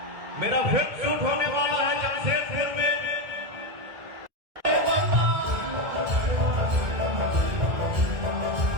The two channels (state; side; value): late; left; 2.0 ms